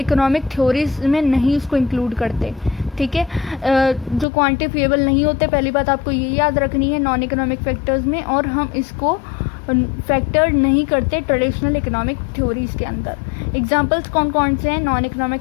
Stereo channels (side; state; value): right; drops out; at 4.2 s